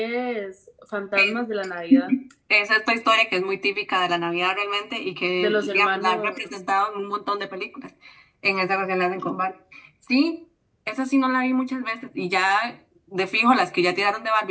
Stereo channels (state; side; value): identical; both; correlation 1.00